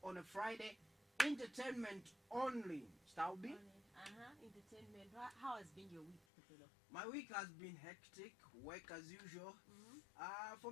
on a Friday. Entertainment only. Staubi? Entertainment. How has been your week, Sapelo? My week has been hectic. Work as usual.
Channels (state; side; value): drops out; right; at 6.2 s